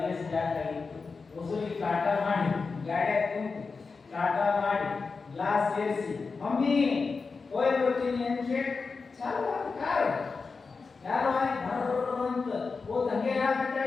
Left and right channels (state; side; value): quieter; right; 4.6 dB